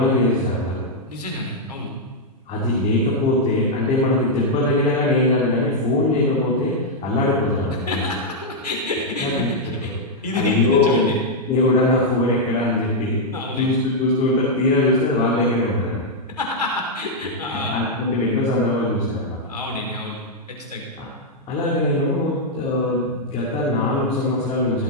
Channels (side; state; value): both; normal; correlation -0.04